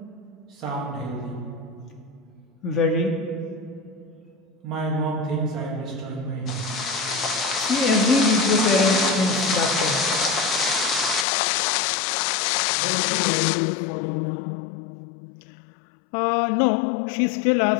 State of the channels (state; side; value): drops out; right; at 11.2 s